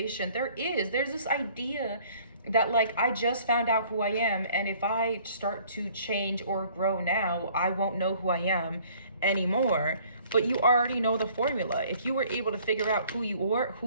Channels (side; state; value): both; inverted; correlation -0.56